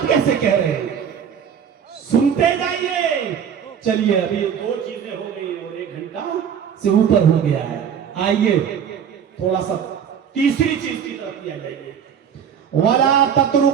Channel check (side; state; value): left; quieter; 8.0 dB